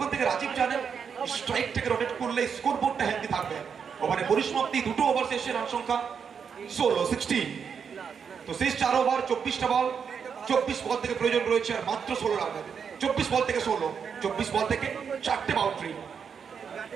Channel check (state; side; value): quieter; left; 6.7 dB